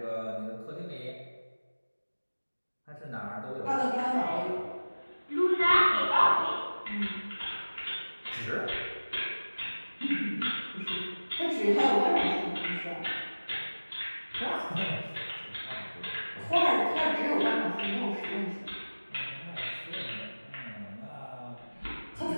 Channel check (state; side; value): inverted; both; correlation -1.00